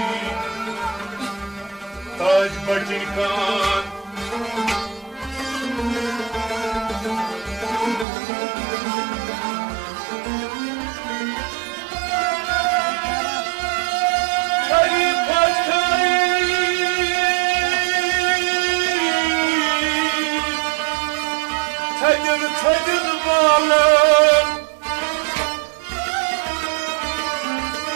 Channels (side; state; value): left; drops out; at 8.1 s